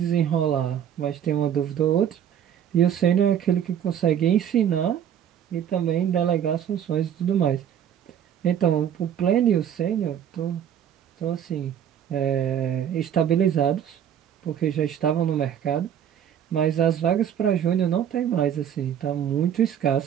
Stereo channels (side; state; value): left; quieter; 9.4 dB